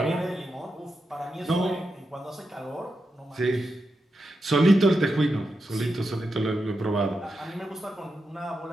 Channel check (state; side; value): normal; both; correlation 0.87